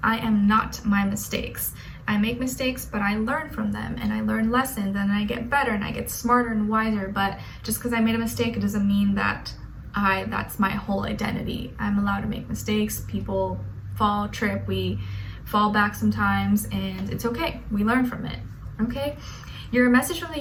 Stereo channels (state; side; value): identical; both; correlation 1.00